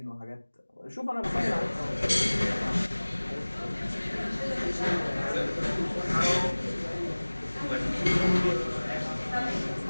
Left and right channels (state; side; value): inverted; both; correlation -1.00